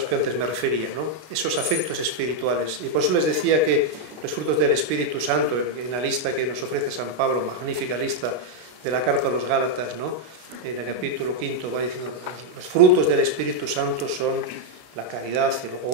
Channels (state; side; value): late; left; 33 ms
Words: que antes me refería, ¿no? Esos afectos espirituales. Y por eso les decía que los frutos del Espíritu Santo, en la lista que nos ofrece San Pablo, magnífica lista de la carta a los Gálatas, ¿no? En el capítulo 5 va diciendo, los frutos del Espíritu Santo son la caridad, el